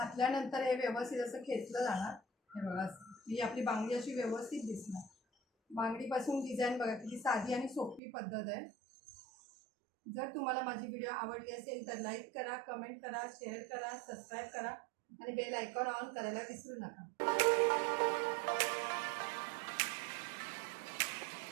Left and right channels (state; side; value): drops out; left; at 8.0 s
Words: हे व्यवस्थित असं खेचलं जाणार. हे बघा ही आपली बांगडी अशी व्यवस्थित दिसणार. बांगडीपासून डिझाईन बघा किती साधी आणि सोपी पद्धत आहे. जर तुम्हाला माझी व्हिडिओ आवडली असेल तर लाईक करा, कमेंट करा, शेअर करा, सबस्क्राईब करा आणि बेल आयकॉन ऑन करायला विसरू नका.